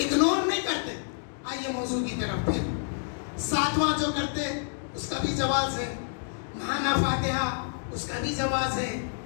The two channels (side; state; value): right; silent; digital silence